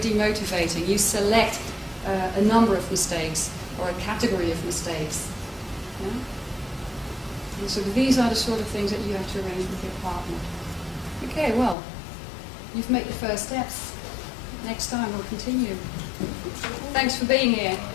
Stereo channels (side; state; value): right; drops out; at 11.8 s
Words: You select a number of mistakes or a category of mistakes. Yeah? And so these are the sort of things that you have to arrange with your partner. Okay, well, you've made the first steps. Next time we'll continue. Thanks for being here.